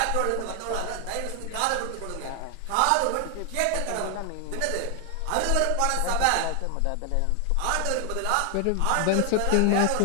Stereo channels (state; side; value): different; both; correlation 0.00